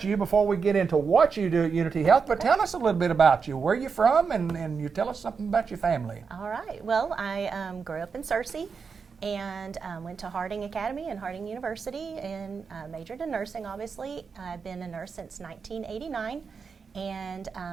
you before we get into what you do at Unity Health, but tell us a little bit about you. Where are you from, and you tell us something about your family. All right. Well, I grew up in Searcy and went to Harding Academy and Harding University and majored in nursing, obviously. I've been a nurse since 1989. And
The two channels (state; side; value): quieter; left; 5.5 dB